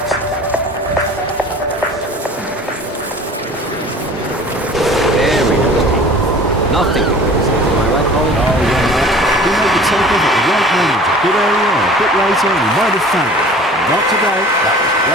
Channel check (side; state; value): both; normal; correlation 0.44